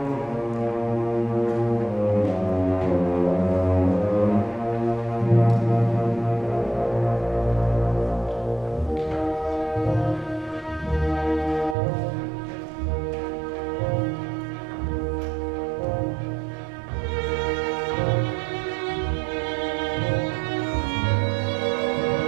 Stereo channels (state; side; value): drops out; left; at 11.8 s